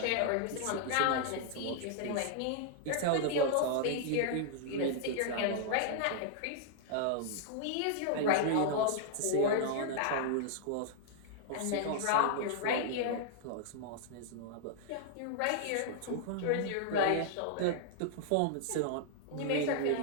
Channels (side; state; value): both; different; correlation -0.01